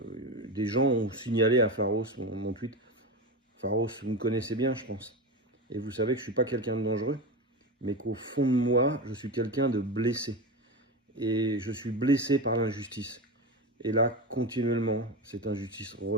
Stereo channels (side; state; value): both; normal; correlation 0.21